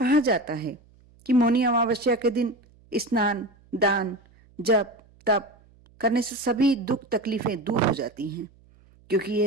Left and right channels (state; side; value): noise; right; hum, 29 dB below the sound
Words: जाता है कि मौनी अमावस्या के दिन स्नान दान जप तप करने से सभी दुख तकलीफें दूर हो जाती हैं, क्योंकि